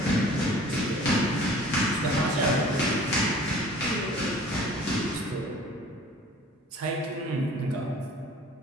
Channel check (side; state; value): both; normal; correlation 0.48